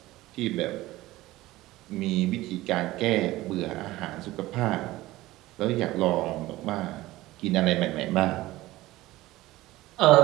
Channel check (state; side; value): quieter; left; 17.6 dB